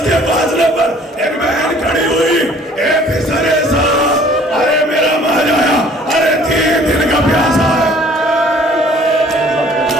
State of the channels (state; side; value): normal; both; correlation 0.55